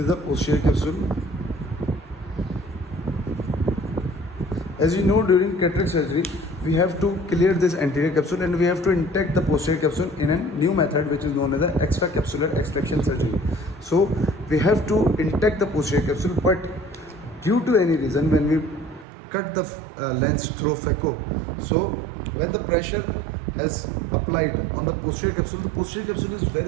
the posterior capsule. As you know, during cataract surgery we have to clear this anterior capsule and we have to intact the posterior capsule in a new method which is known as the extracapsular extraction surgery. So we have to intact the posterior capsule, but due to any reason when we cut the lens through phaco, so when the pressure is applied on the posterior capsule is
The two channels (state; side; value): drops out; left; at 19.1 s